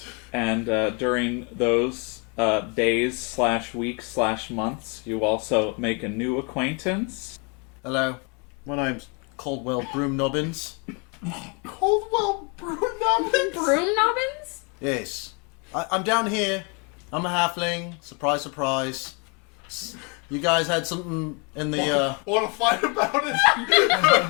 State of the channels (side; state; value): right; quieter; 33.7 dB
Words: And during those days/weeks/months, you also make a new acquaintance. Hello. My name's Caldwell Broomnobbins. Caldwell Broomnobbins? Broomnobbins? Yes. I'm down here. I'm a halfling. Surprise, surprise. You guys had something in the, Want to fight about it?